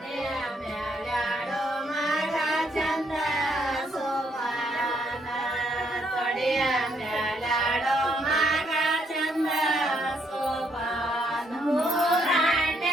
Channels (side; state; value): both; normal; correlation 0.72